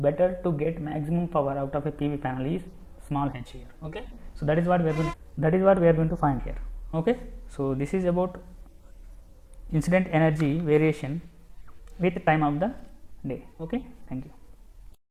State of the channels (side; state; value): both; identical; correlation 1.00